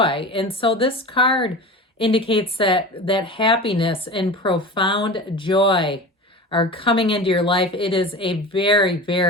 And so this card indicates that happiness and profound joy are coming into your life. It is a very,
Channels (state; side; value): normal; both; correlation 0.32